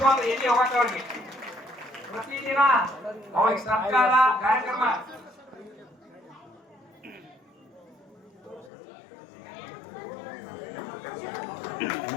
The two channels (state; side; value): drops out; right; at 8.7 s